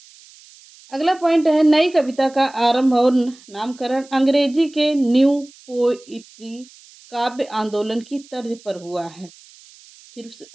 अगला पॉइंट है, नई कविता का आरंभ और नामकरण अंग्रेजी के न्यू पोइट्री काव्य आंदोलन की तर्ज पर हुआ है। फिर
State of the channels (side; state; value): right; noise; hiss, 24 dB below the sound